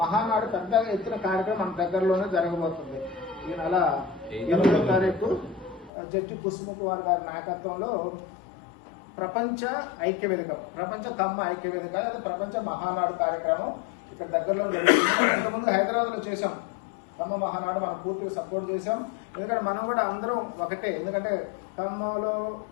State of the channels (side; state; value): right; drops out; at 5.9 s